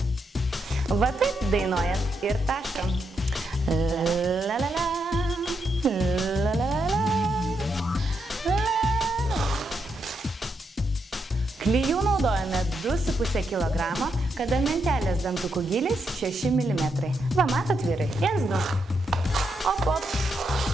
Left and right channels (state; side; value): normal; both; correlation 0.81